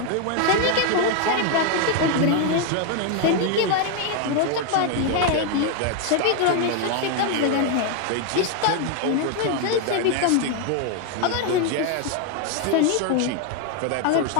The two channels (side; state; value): both; different; correlation 0.01